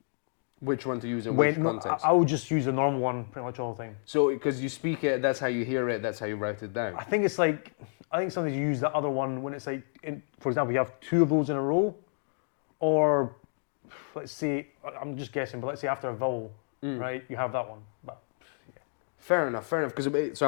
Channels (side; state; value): right; silent; digital silence